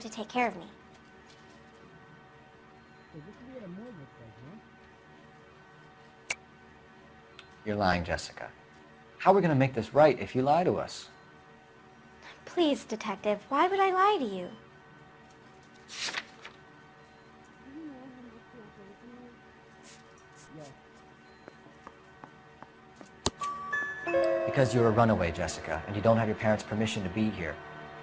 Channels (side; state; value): both; identical; correlation 1.00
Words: to take care of me. You're lying, Jessica. How are we going to make this right if you lie to us? Please, Detective, why would I lie to you? Because you're a runaway, Jessica, and you don't have your parents' permission to be here.